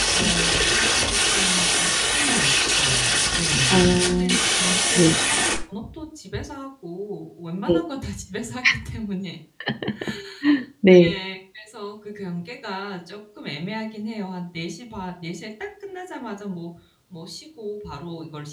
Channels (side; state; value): both; identical; correlation 1.00